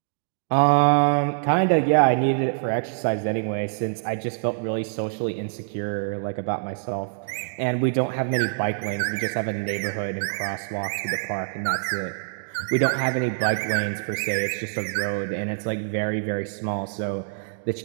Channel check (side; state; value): left; silent; digital silence